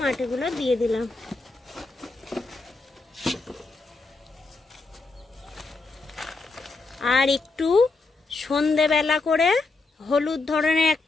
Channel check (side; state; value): right; quieter; 3.6 dB